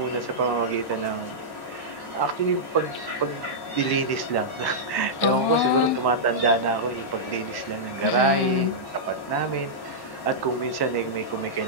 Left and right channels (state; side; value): late; right; 1.1 ms